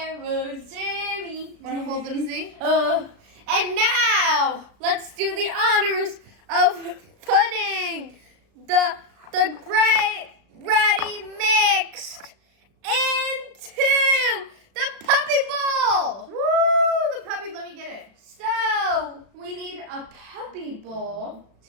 Jerry. Want to hold them, see? And now, let's do the honors of putting the great ready mixed into the puppy bowl. Woo! The puppy, let me get it. So, we need a puppy bowl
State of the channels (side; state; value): left; late; 36 ms